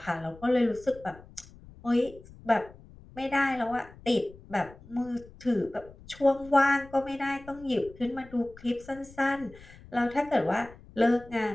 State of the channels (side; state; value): left; noise; rumble, 21 dB below the sound